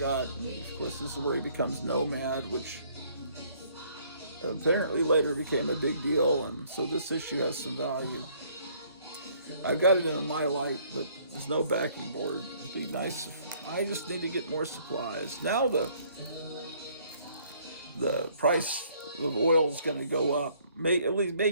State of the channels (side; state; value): both; inverted; correlation -0.62